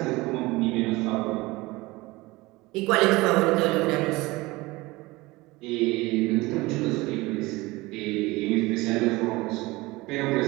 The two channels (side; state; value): left; quieter; 21.5 dB